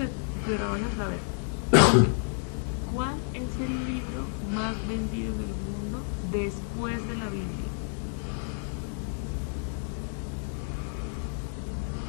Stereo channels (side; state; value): right; silent; 58 dB below the other